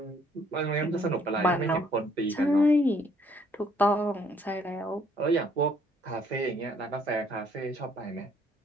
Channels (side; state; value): both; normal; correlation 0.64